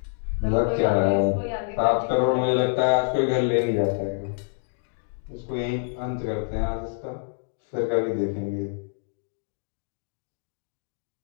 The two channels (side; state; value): right; silent; digital silence